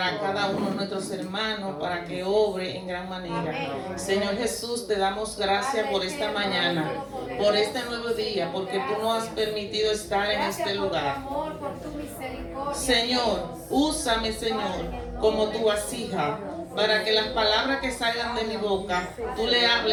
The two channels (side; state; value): both; identical; correlation 1.00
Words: cada uno de nuestros hermanos, para que obre en gran manera. Señor Jesús, te damos gracias por esta mañana, por este nuevo día, porque tú nos has permitido estar en este lugar. Señor, úsame, Señor, como tu vasija, para que las palabras que salgan de mi boca, tú le